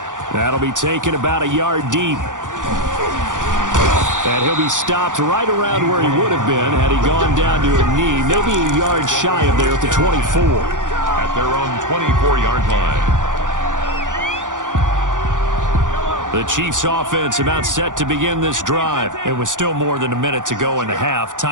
That'll be taken about a yard deep. And he'll be stopped right around where he would have been had he gone down to a knee, maybe a yard shy of there at the 24. At their own 24-yard line. The Chiefs offense about set to begin this drive. It was still more than a minute to go in the half.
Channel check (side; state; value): left; late; 0.87 ms